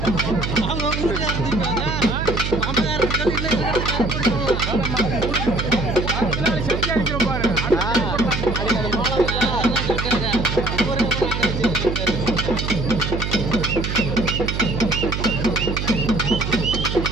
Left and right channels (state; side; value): noise; right; hum, 3 dB below the sound